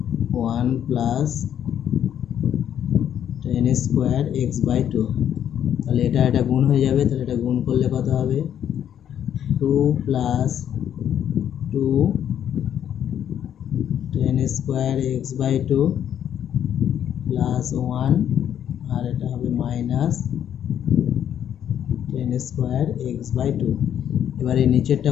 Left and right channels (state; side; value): quieter; right; 9.7 dB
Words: 1 plus tan square x/2। তাহলে এটা গুণ হয়ে যাবে, তাহলে এটা গুণ করলে কত হবে, 2 plus 2 tan square x/2 plus 1, আর এটা হবে মাইনাস tan স্কোয়ার x/2। এবারে নিচেরটা